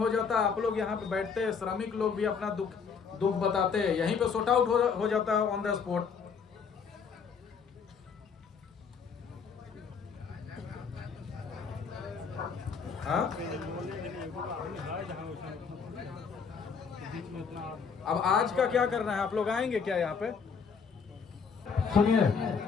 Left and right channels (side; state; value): right; quieter; 6.0 dB